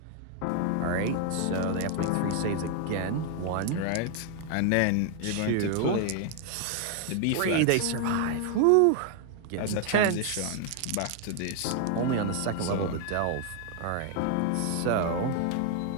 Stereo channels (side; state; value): both; different; correlation 0.00